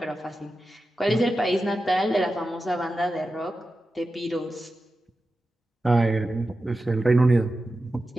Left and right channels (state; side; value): normal; both; correlation 0.92